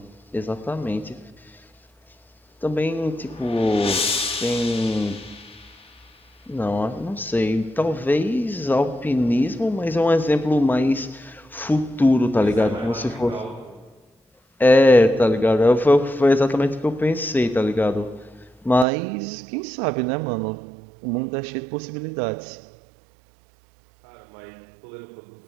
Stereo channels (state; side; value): drops out; left; at 18.9 s